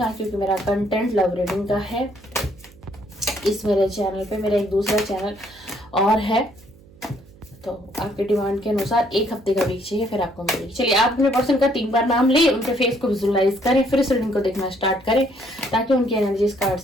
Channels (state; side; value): noise; right; hum, 25 dB below the sound